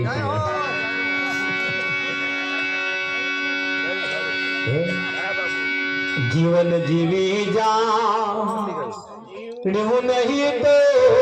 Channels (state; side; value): identical; both; correlation 1.00